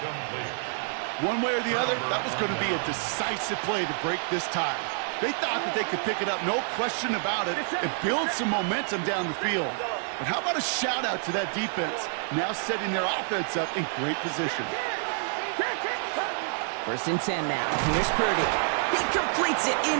One way or the other, that was going to be a decisive play to break this tie. They thought that they could pick it up, no question about it, and build some momentum down the field. But how about a shout-out to that defense, now setting their offense up in great position. 1st and 10 now. Here's Purdy. He completes it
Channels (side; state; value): left; silent; 59 dB below the other